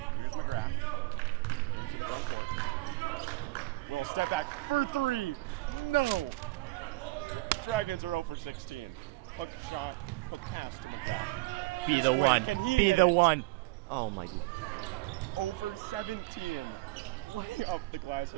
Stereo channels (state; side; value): quieter; left; 21.3 dB